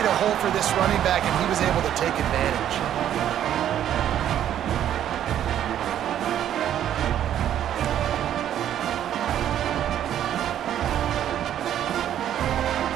a hole for this running back, and he was able to take advantage.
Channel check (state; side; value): quieter; left; 10.7 dB